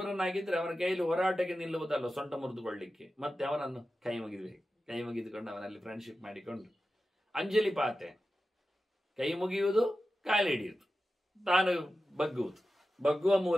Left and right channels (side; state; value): both; normal; correlation 0.93